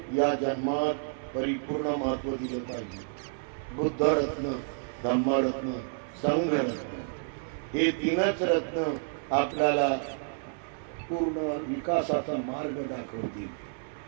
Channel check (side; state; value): left; silent; 58 dB below the other